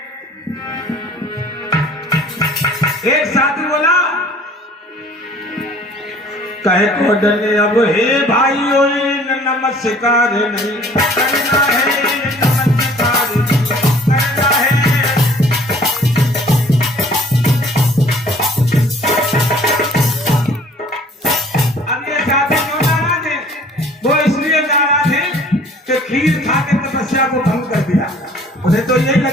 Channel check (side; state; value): both; normal; correlation 0.53